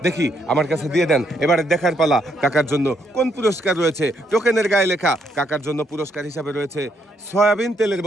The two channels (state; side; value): normal; both; correlation 0.74